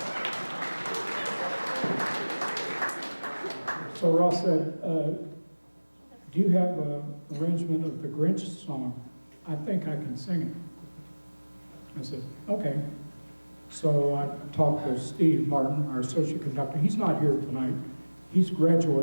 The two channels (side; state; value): both; inverted; correlation -1.00